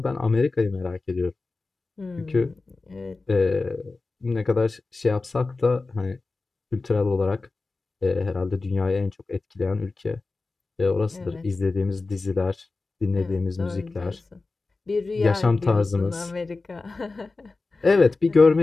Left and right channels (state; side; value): quieter; right; 3.6 dB